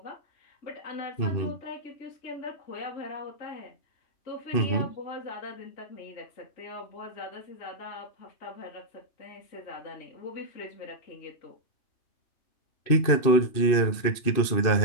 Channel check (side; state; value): right; late; 2.6 ms